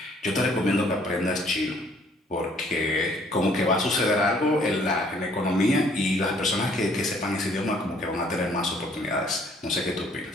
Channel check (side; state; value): both; normal; correlation 0.61